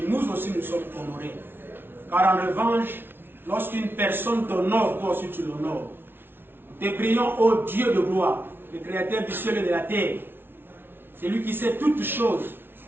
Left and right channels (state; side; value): late; left; 0.11 ms